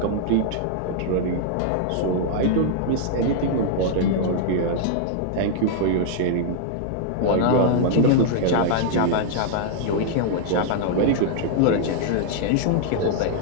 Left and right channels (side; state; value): both; different; correlation -0.01